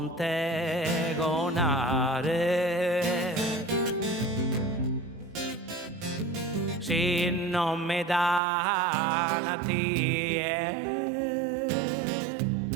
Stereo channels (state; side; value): drops out; left; at 8.4 s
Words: Gonare si non mi dà una tie